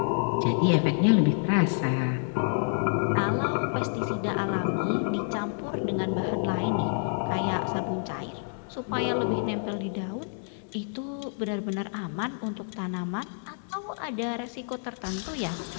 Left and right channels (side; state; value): right; silent; digital silence